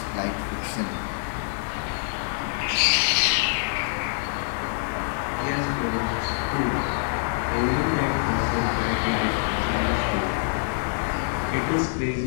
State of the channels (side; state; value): right; silent; 58 dB below the other